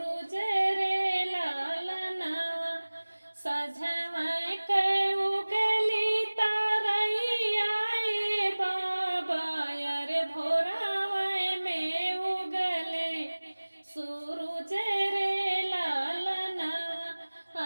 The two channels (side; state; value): both; inverted; correlation -1.00